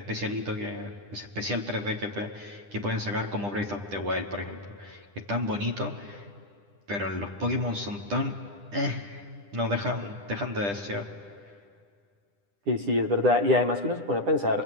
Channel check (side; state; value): left; late; 10 ms